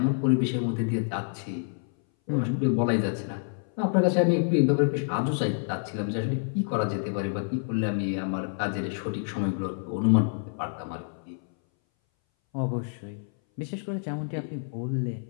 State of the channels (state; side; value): silent; right; 59 dB below the other